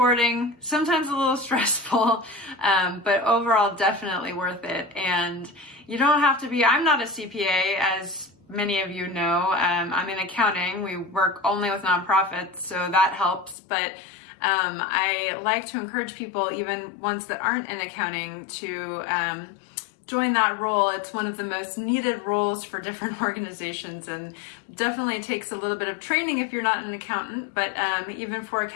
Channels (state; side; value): drops out; right; at 13.6 s